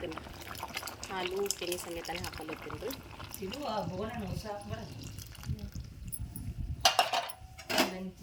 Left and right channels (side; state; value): both; identical; correlation 1.00